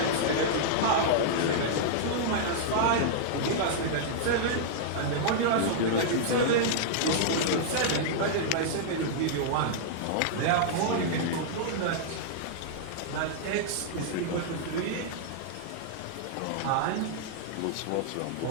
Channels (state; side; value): different; both; correlation -0.02